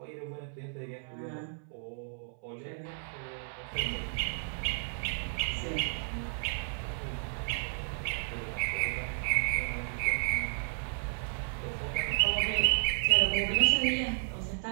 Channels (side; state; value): left; silent; 56 dB below the other